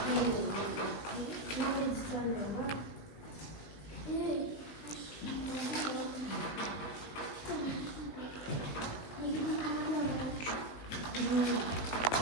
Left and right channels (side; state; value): right; late; 19 ms